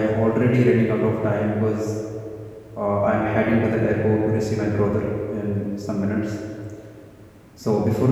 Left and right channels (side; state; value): both; identical; correlation 1.00